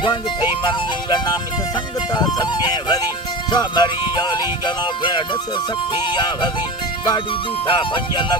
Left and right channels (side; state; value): both; normal; correlation 0.28